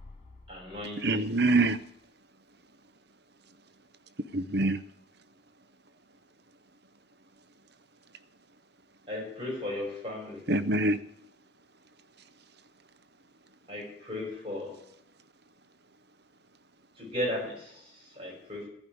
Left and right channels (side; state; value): both; normal; correlation 0.49